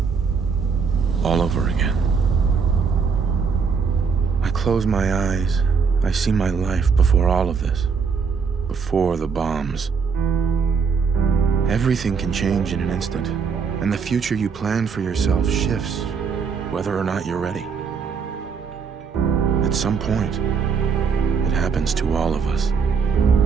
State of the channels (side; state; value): left; quieter; 5.7 dB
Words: All over again. I close my eyes. I see my life before all of this. Before the bombs. Everything can change in an instant, and the future you plan for yourself shifts, whether or not you're ready. At some point, it happens to all of us.